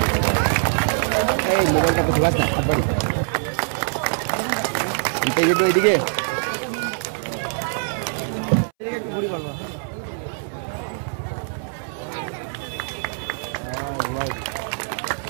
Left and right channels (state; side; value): silent; left; 63 dB below the other